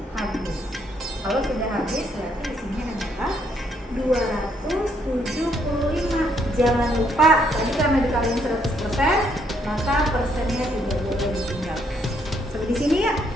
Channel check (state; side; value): normal; both; correlation 0.71